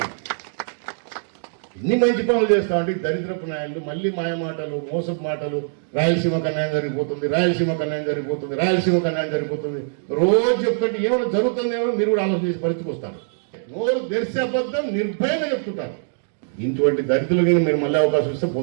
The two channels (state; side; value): silent; left; digital silence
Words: ఎన్ని మంచి పనులు చేస్తామంటే దరిద్రపు నాయకులు మళ్ళీ మాయమాటలు, మోసపు మాటలు. రాయలసీమకు అన్యాయం జరిగిపోతుంది, రాయలసీమకు అన్యాయం జరిగిపోతుంది, రాయలసీమకు అన్యాయం జరిగిపోతుంది. రోజు చెప్తుంటే ఏమైనా జరుగుతుందేమో మీరు కూడా ఆలోచన చేసి పరిస్థితికి వస్తారు. నోరు తెరిసే అబద్ధం నిర్భయంగా చెప్తుంటారు. ఇటువంటి దరిద్రులకి మీరు మళ్ళీ అవకాశం ఇస్తే